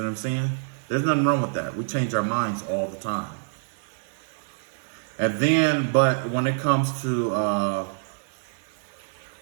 I'm saying? There's nothing wrong with that. We change our minds all the time. And then, but when it comes to,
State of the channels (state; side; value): silent; left; digital silence